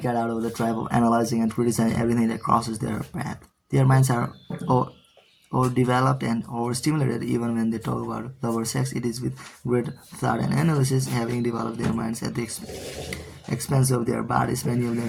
get out of the trap of analyzing and criticizing everything that crosses their path. Their minds are overdeveloped and overstimulated. Even when they talk about love or sex, it is with great thought and analysis, having developed their minds at the expense of their bodies. Many of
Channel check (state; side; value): identical; both; correlation 1.00